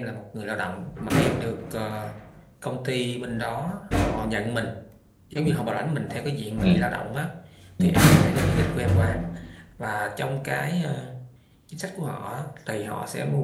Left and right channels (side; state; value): both; identical; correlation 1.00